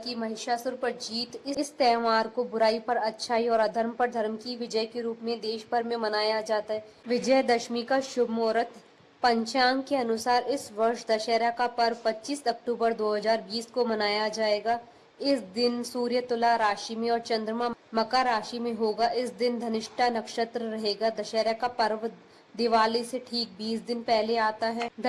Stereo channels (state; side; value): identical; both; correlation 1.00